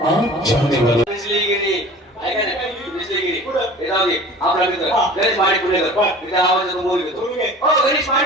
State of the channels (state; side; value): normal; both; correlation 0.42